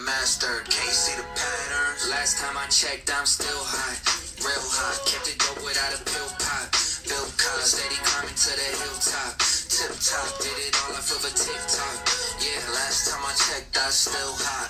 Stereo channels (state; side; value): identical; both; correlation 1.00